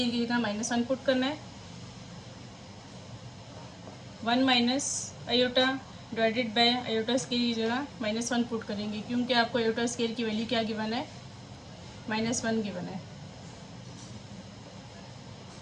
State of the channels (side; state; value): both; identical; correlation 1.00